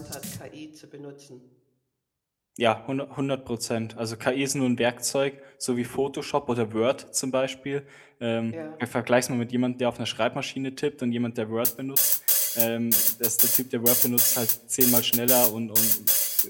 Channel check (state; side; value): identical; both; correlation 1.00